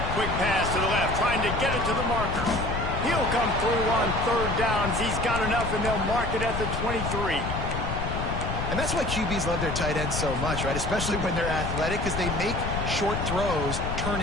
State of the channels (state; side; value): noise; left; rumble, 3 dB below the sound